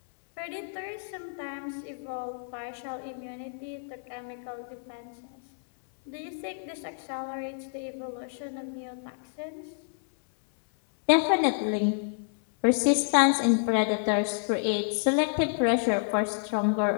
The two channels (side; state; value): right; silent; 59 dB below the other